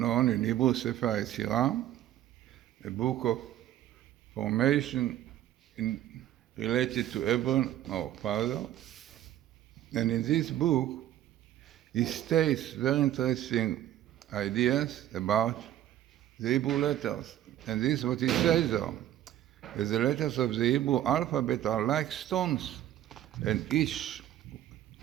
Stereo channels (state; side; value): quieter; left; 12.6 dB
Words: in Hebrew, Sefer Yetzirah, a book of formation related to Abraham, our father. And in this book, he states very interesting ideas about the Hebrew letters. And this is what he says there. The letters of the Hebrew alphabet are like stones, and each